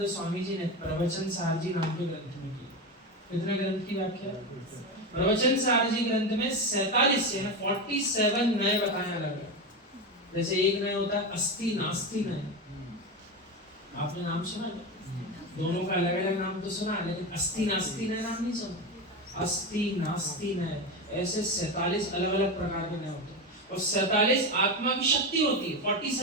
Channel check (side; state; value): both; normal; correlation 0.18